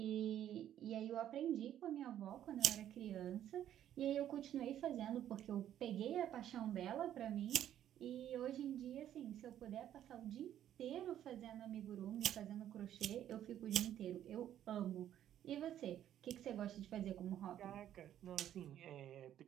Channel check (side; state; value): left; quieter; 11.1 dB